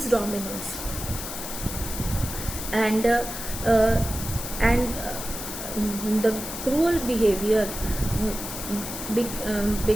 dominance. And and the cruel behavior be,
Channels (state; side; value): noise; left; hiss, 7 dB below the sound